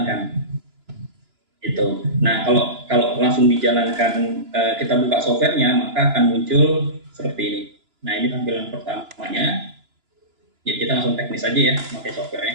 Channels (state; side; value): late; left; 2.9 ms